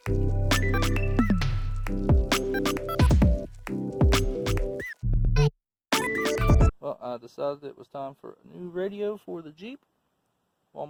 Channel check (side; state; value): both; identical; correlation 1.00